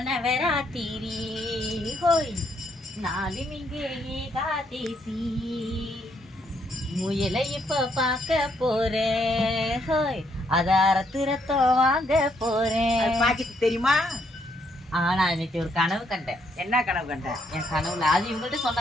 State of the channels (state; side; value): normal; both; correlation 0.73